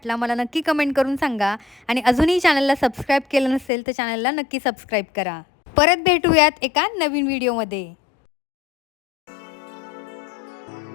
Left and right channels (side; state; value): right; drops out; at 3.7 s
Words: मला नक्की कमेंट करून सांगा. आणि अजूनही चॅनलला सबस्क्राईब केलं नसेल तर चॅनलला नक्की सबस्क्राईब करा. परत भेटूयात एका नवीन व्हिडिओमध्ये.